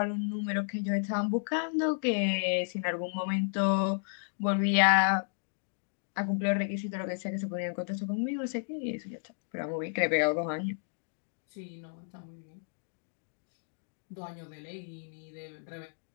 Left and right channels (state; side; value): silent; right; digital silence